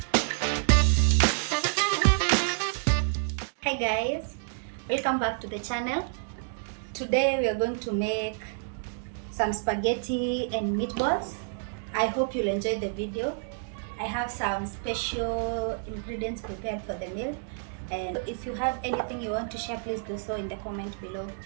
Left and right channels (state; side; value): silent; left; digital silence